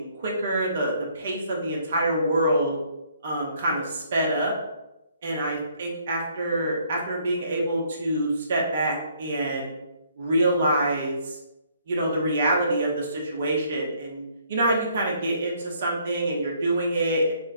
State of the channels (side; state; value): both; inverted; correlation -0.66